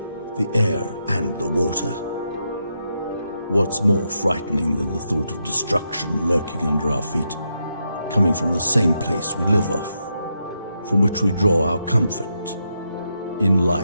the air, and the water. What's more frightening than the thought of destruction lurking under our feet, coming from the same place we live off, from which we draw our comfort in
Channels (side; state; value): both; inverted; correlation -0.83